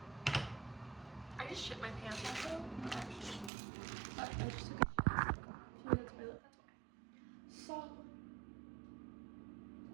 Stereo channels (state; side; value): drops out; left; at 3.5 s